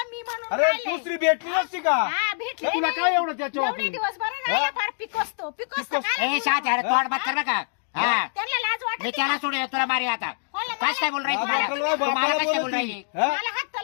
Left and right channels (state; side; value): silent; right; 62 dB below the other